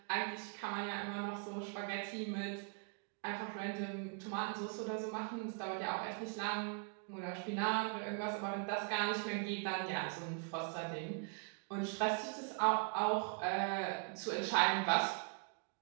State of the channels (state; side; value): quieter; left; 39.8 dB